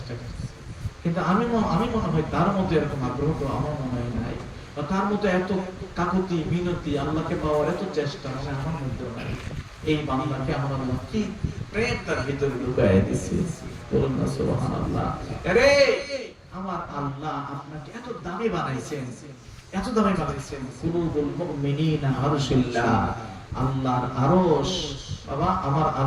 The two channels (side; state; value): both; identical; correlation 1.00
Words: করছে। কিন্তু আমি মনে হয় তার মধ্যে এরকম আগ্রহ তো আমার মনে হয় নাই, বা তার মধ্যে এত কাকুতি মিনতি আল্লাহকে পাওয়ার এত চেষ্টা মানে আমার মধ্যে নাই। এই বান্দাকে আমার আল্লাহ কি প্রেম তার ভিতরে ঢুকায় দিয়েছে, বলুন না সুবহানাল্লাহ। আরে আমার আল্লাহ আপনাকে এত দামি বানাইছেন, এত দামি বানাইছেন। কুলুবুল মুমিনিনা আরশুল্লাহ, আল্লাহর আরশ। বাবা আমার